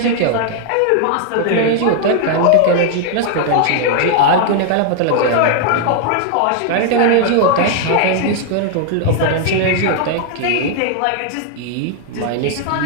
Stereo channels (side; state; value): both; different; correlation 0.00